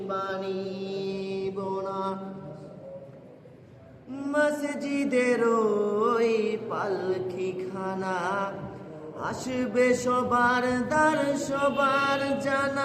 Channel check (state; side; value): identical; both; correlation 1.00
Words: পারিব না। মসজিদের ওই পালকিখানা, আসবে সবার দ্বার সবার